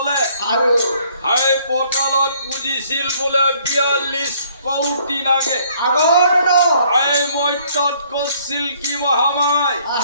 হাই পটলত পুজিছিল বোলে ৪২ কৌটি নাগে এই মৈত্যত কৰিছিল কি মহামায়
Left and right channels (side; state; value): both; inverted; correlation -0.62